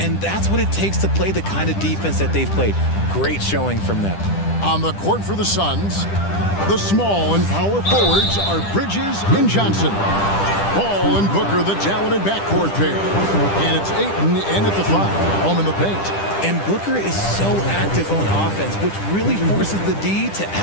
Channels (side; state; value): right; late; 10 ms